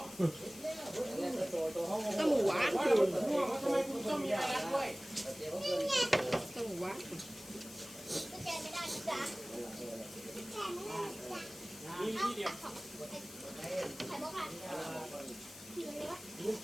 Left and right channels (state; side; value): noise; left; hiss, 16 dB below the sound